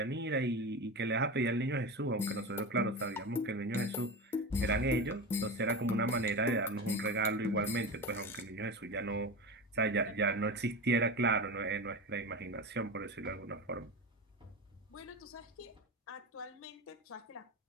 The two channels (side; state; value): both; normal; correlation 0.24